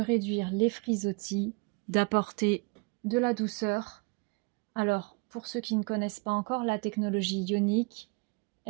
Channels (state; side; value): quieter; left; 30.6 dB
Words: les frisottis, d'apporter de la douceur. Alors, pour ceux qui ne connaissent pas encore la technologie ionique,